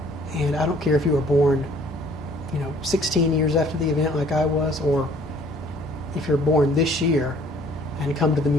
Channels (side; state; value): both; normal; correlation 0.57